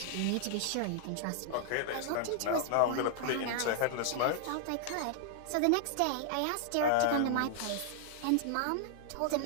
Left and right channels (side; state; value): both; different; correlation -0.01